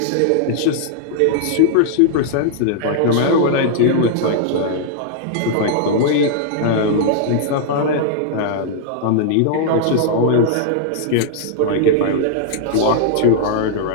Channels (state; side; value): different; both; correlation -0.01